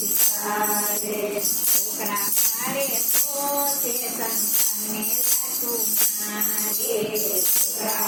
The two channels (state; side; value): identical; both; correlation 1.00